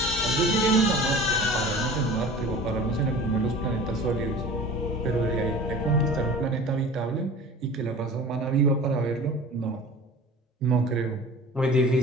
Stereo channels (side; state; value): both; normal; correlation 0.40